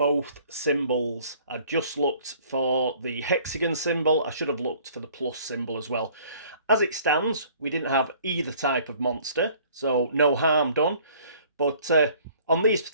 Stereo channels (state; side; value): inverted; both; correlation -0.54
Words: symbols. I just looked for the hexagon symbol. I should have looked for the plus symbol as well. As it stands, we didn't have either type of monster, so no harm done. But on these